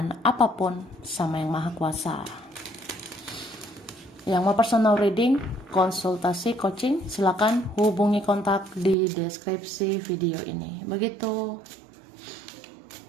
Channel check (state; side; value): drops out; left; at 9.0 s